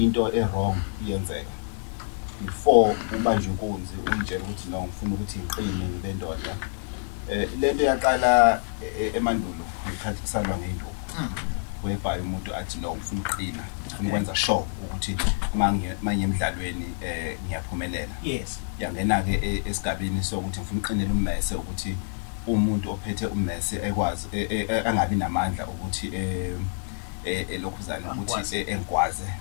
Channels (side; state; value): right; silent; digital silence